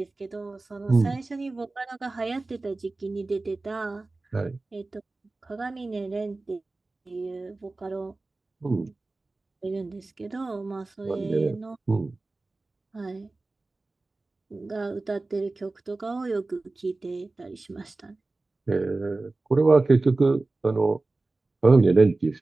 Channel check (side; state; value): left; quieter; 3.3 dB